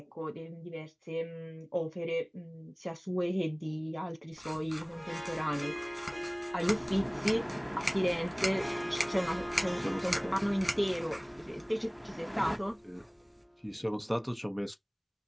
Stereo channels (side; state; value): both; identical; correlation 1.00